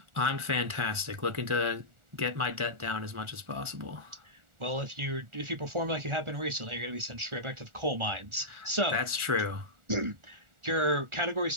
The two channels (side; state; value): left; late; 1.4 ms